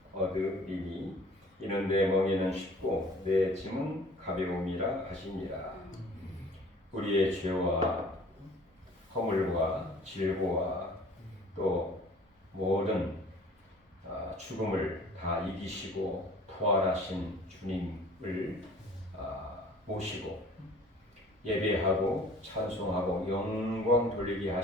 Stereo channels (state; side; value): normal; both; correlation 0.50